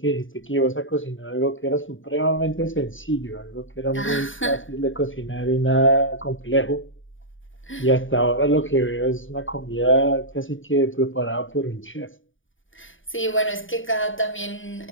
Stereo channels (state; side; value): late; right; 0.57 ms